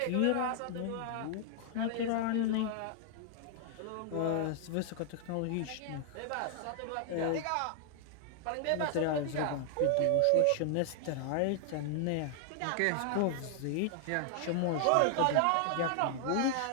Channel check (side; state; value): both; different; correlation 0.00